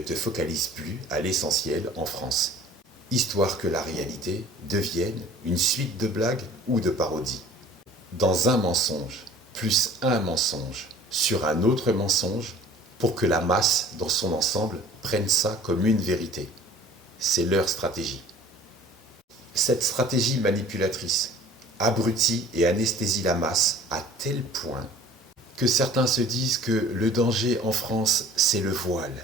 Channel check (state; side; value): normal; both; correlation 0.48